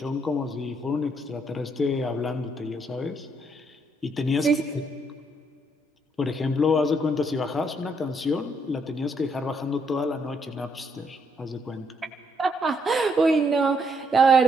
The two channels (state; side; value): normal; both; correlation 0.73